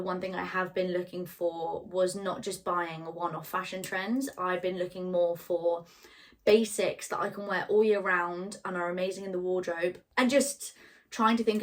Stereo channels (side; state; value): both; identical; correlation 1.00